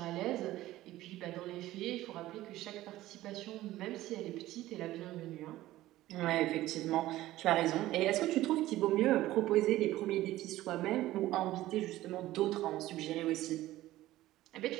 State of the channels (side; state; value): left; quieter; 15.7 dB